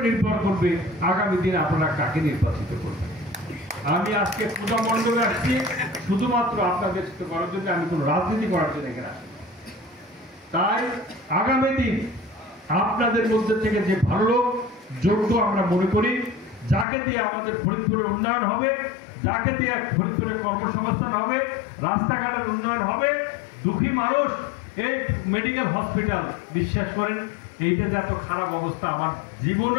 নির্ভর করবে আগামী দিনে আপনারা কাকে নির্বাচিত করবেন। আমি আজকে পূজা মণ্ডপে আসছি শুধুমাত্র আপনাদের সাথে করার জন্য, আমি কোনো রাজনীতি করার জন্য এখানে আসছি। তাই আগামী দিন আপনাদের মধ্যে থেকে যে ভালো লোক যোগ্য আমরা মনে করি, যাকে দিয়ে আমাদের ফরিদপুরের উন্নয়ন হবে, যাকে দিয়ে ফরিদপুরের কর্মসংস্থান হবে, রাস্তাঘাটের উন্নয়ন হবে, দুঃখী মানুষ এই মেডিকেল হসপিটাল, বিশ্বাস করেন এইটা যে এত খারাপ অবস্থা আমার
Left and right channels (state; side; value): drops out; right; at 16.9 s